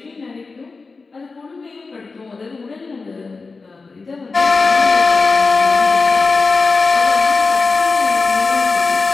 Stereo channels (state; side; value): quieter; right; 4.1 dB